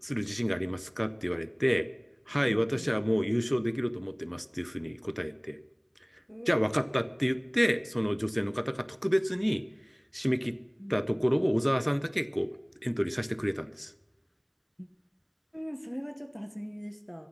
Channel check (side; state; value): both; identical; correlation 1.00